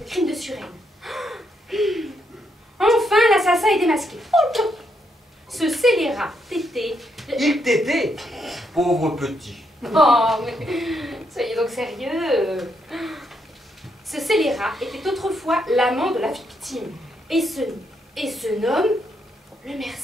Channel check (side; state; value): both; normal; correlation 0.77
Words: Le crime de Suresnes. Enfin, l'assassin est démasqué. Oh, ce scélérat tété... Il t'était, pauvre petit. Oh, mais soyez donc sérieux. Ce scélérat était autrefois l'amant de la victime. Et ce nomme, Le